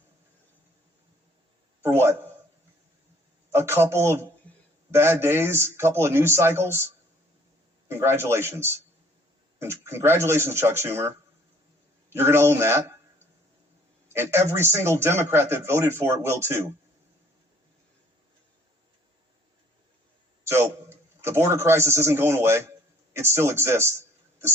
For what? A couple of bad days, a couple of news cycles? Congratulations. Congratulations, Chuck Schumer. You're going to own that. And every single Democrat that voted for it will too. So the border crisis isn't going away. It still exists. The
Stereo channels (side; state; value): both; normal; correlation 0.58